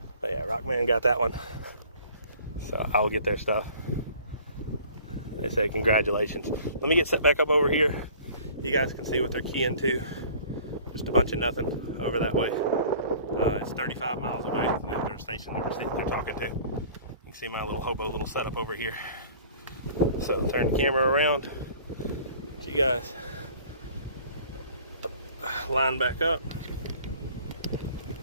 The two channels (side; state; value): both; inverted; correlation -0.49